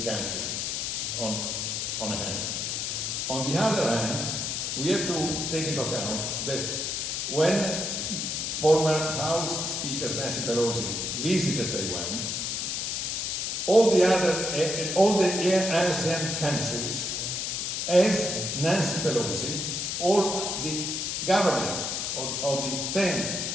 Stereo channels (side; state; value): left; noise; hiss, 1 dB below the sound